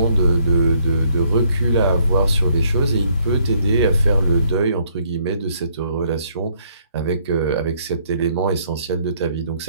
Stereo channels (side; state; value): both; inverted; correlation -0.67